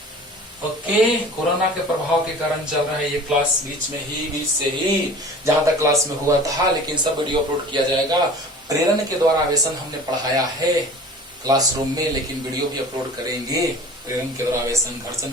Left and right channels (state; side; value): normal; both; correlation 0.42